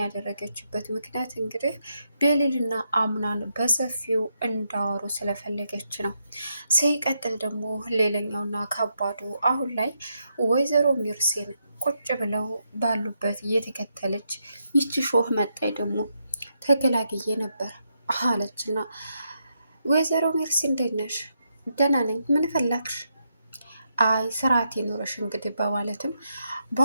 ያደረገችበት ምክንያት እንግዲህ ቤሊልና አምናን በሰፊው እንዳወሩ ስለፈለገች ነው። ሲቀጥል ደግሞ ሌላኛውና ከባዱ አሁን ላይ ወይዘሮ ሚርሴን ቁጭ ብለው ባሉበት እየተከተለች ይቺ ሾህ መጣይ ደግሞ ተገላግዬ ነበር አለችና ወይዘሮ ሚርሲ እንዴት ነሽ? ደህና ነኝ። ምን ፈላግሽ? አይ ስርዓት ይኖረሽ እንግዲህ በማለትም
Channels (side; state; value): both; inverted; correlation -0.81